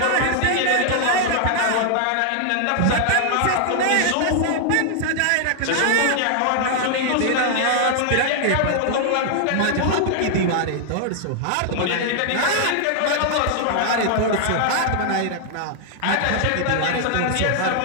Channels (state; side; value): different; both; correlation 0.00